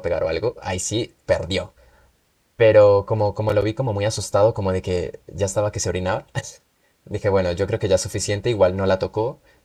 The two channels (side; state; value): both; identical; correlation 1.00